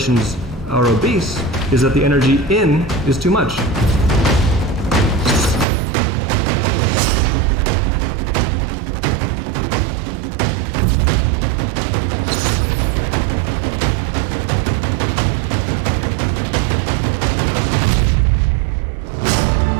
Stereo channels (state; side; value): drops out; left; at 5.7 s